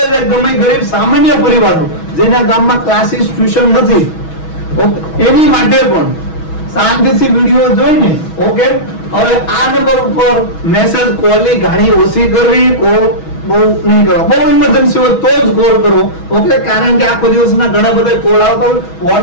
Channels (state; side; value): late; right; 6.2 ms